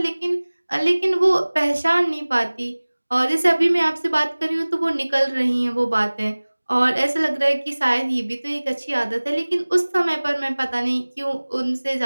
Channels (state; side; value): inverted; both; correlation -1.00